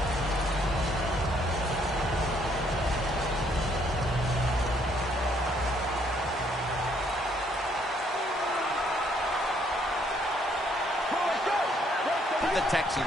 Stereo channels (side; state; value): both; normal; correlation 0.67